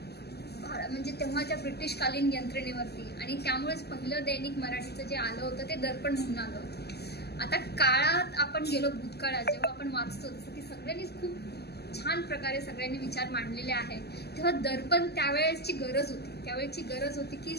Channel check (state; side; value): late; right; 0.47 ms